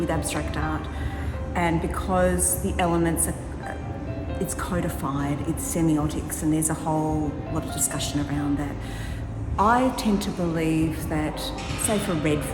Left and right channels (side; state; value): both; identical; correlation 1.00